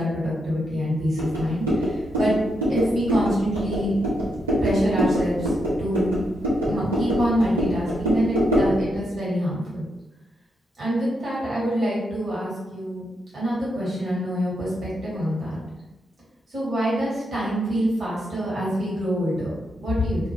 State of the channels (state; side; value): normal; both; correlation 0.81